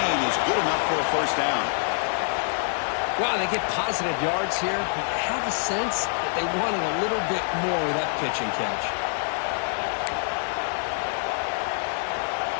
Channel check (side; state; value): right; silent; digital silence